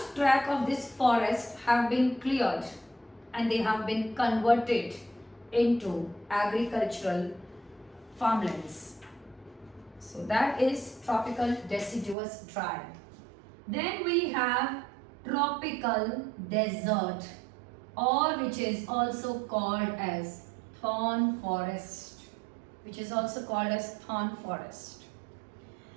tract of this forest have been cleared and they have been converted into agricultural farmlands. So that is tropical deciduous dry. Then we have tropical desert, or which is also called as thorn forest, which is also called as thorn forest.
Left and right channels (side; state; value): left; drops out; at 12.2 s